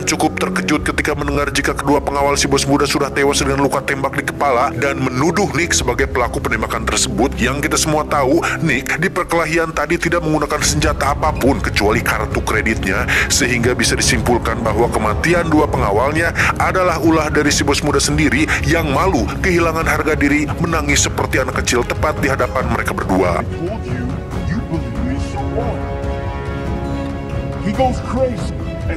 cukup terkejut ketika mendengar jika kedua pengawal si bos muda sudah tewas dengan luka tembak di kepala dan menuduh Nick sebagai pelaku penembakan tersebut. Yang kita semua tahu, Nick di perkelahian tadi tidak menggunakan senjata apapun kecuali kartu kreditnya, sehingga bisa disimpulkan bahwa kematian dua pengawalnya adalah ulah dari si bos muda sendiri yang malu, kehilangan harga diri, menangis seperti anak kecil tepat di hadapan mereka berdua. You believe me so what? He goes crazy and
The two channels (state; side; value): identical; both; correlation 1.00